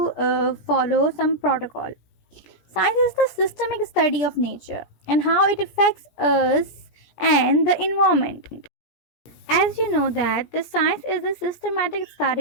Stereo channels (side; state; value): right; late; 17 ms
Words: follow some protocol. Science is the systemic study of nature and how it affects us and the environment. As you know that the science is a systematic